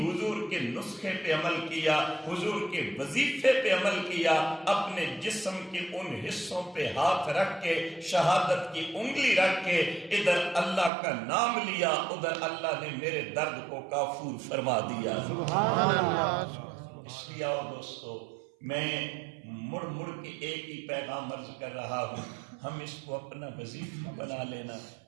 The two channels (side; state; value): left; drops out; at 10.9 s